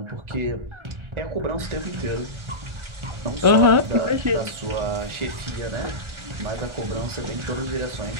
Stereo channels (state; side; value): late; left; 1.4 ms